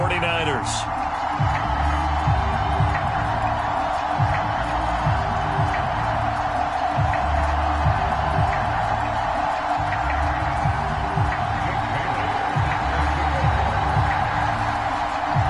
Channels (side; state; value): both; identical; correlation 1.00